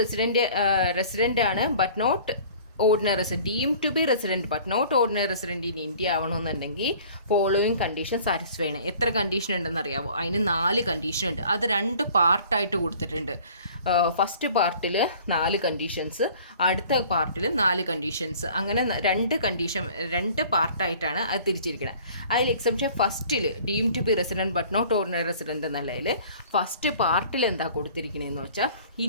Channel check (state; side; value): inverted; both; correlation -0.49